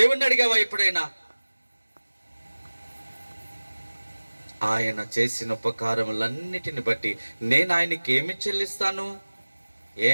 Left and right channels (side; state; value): both; inverted; correlation -1.00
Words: అడిగావా ఎప్పుడైనా? ఆయన చేసిన ఉపకారములన్నిటిని బట్టి నేను ఆయనకి ఏమి చెల్లిస్తాను?